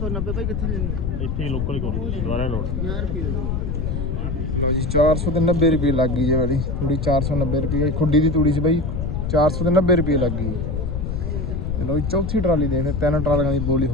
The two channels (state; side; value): noise; left; rumble, 2 dB below the sound